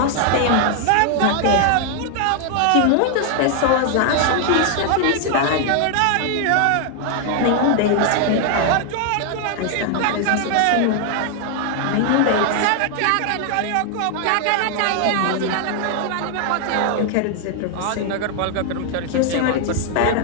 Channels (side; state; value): both; different; correlation 0.00